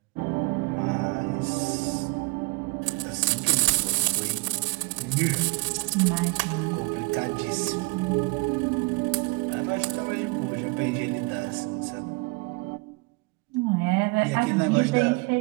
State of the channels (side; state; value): left; quieter; 28.6 dB